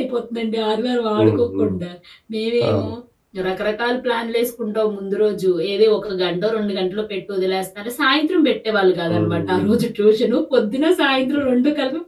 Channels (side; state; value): both; identical; correlation 1.00